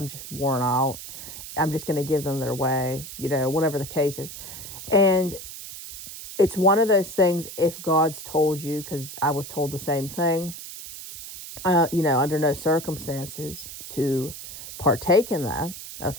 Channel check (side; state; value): right; noise; hiss, 11 dB below the sound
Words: just worn out. I'm just going to give them their way, whatever the case is. And it's one of those things, if God's told you, because I was told the same thing, under no circumstances to partake in that.